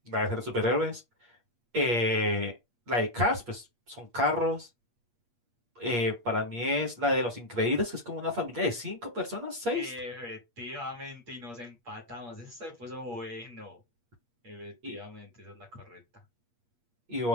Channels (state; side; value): late; left; 8.5 ms